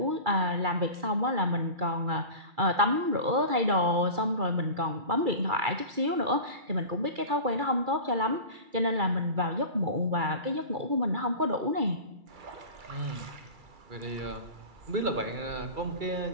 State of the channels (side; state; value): left; late; 2.3 ms